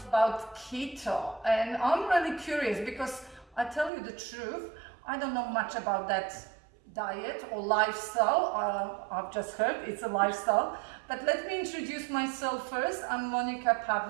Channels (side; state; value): left; drops out; at 3.9 s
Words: about keto, and I'm really curious because I tell you the truth, I don't know much about that diet or lifestyle. I've just heard it's a lifestyle, but let me introduce myself first. I'm Monica